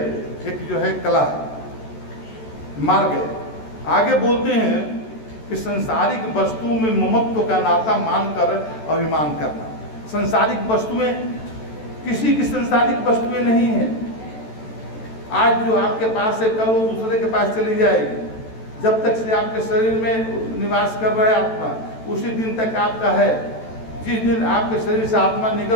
एक जो है कला है, मार्ग है। आगे बोलते हैं कि संसारिक वस्तुओं में ममत्व का नाता मानकर अभिमान करना। संसारिक वस्तुएं, किसी की संसारिक वस्तुएं नहीं है। आज जो आपके पास है, कल वो दूसरे के पास चली जाएगी। जब तक से आपके शरीर में निवास कर रहा है आत्मा, उसी दिन तक आपका है। जिस दिन आपके शरीर से आत्मा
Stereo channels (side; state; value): right; late; 14 ms